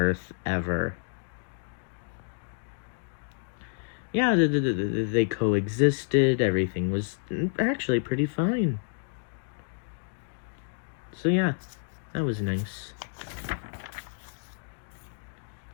ever. Yeah, they coexisted. Everything was actually pretty fine. So yeah, that was nice.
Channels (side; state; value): right; silent; digital silence